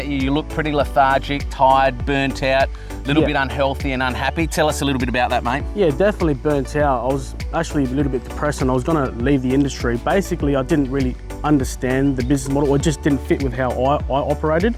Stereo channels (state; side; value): identical; both; correlation 1.00